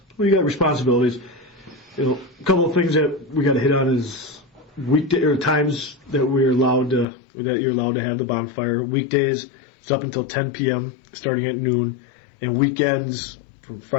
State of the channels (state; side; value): drops out; right; at 7.1 s